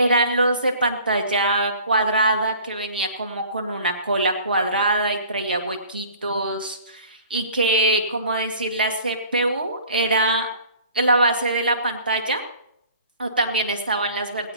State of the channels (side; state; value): both; inverted; correlation -0.49